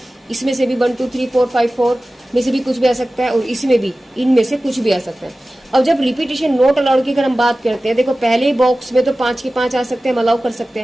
इसमें से भी 1 2 3 4 5 4 में से भी कुछ भी आ सकता है और इसमें भी इनमें से कुछ भी आ सकता है। अब जब रिपीटेशन नॉट अलाउड की अगर हम बात करते हैं, देखो पहले बॉक्स में तो 5 के 5 आ सकते हैं, हम अलाउ कर सकते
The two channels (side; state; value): both; normal; correlation 0.96